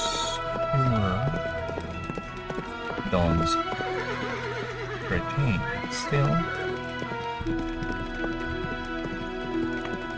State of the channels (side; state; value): both; identical; correlation 1.00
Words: dawns retain still